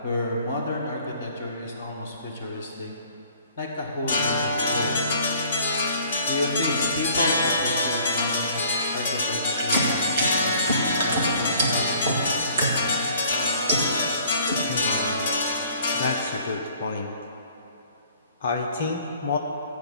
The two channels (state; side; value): inverted; both; correlation -0.55